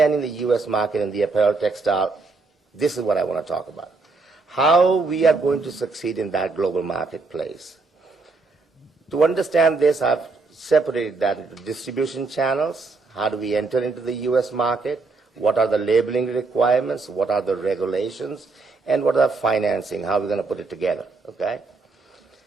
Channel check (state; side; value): quieter; left; 3.9 dB